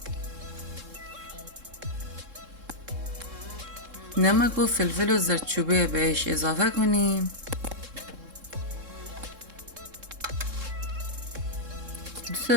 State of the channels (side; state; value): left; late; 3.7 ms